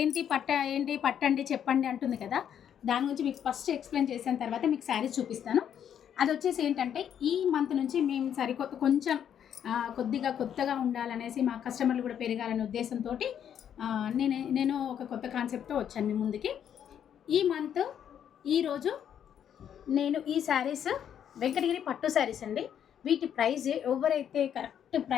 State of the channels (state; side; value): quieter; right; 9.1 dB